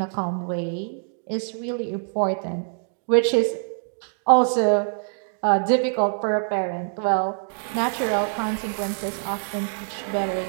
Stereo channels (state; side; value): silent; left; digital silence